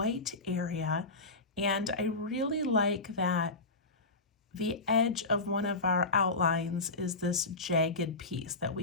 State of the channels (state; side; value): quieter; right; 3.3 dB